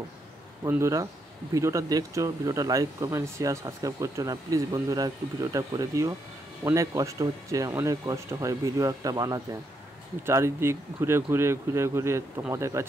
বন্ধুরা, ভিডিওটা দেখছো, ভিডিওটা লাইক কমেন্ট শেয়ার সাবস্ক্রাইব করছো না, প্লিজ বন্ধুরা একটু ভিডিওটা করে দিও। অনেক কষ্ট হচ্ছে, অনেক কষ্ট হয় ভিডিও একটা বানাতে। চারিদিক ঘুরে তোমাদের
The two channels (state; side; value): normal; both; correlation 0.78